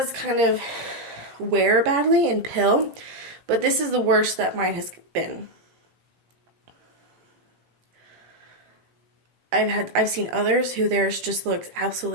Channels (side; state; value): left; late; 17 ms